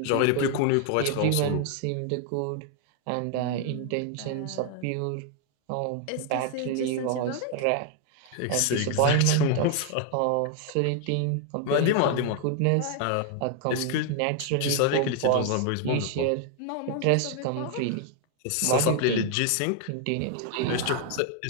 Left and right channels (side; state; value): both; different; correlation 0.00